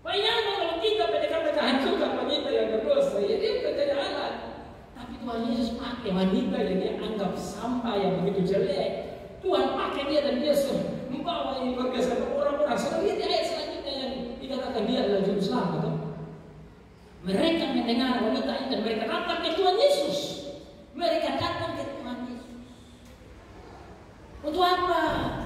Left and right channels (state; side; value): identical; both; correlation 1.00